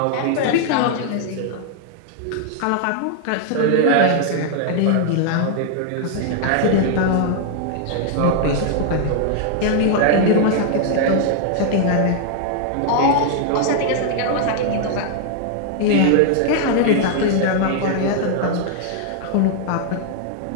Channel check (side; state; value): both; different; correlation 0.00